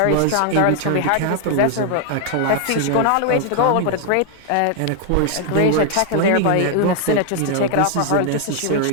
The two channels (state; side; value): different; both; correlation 0.00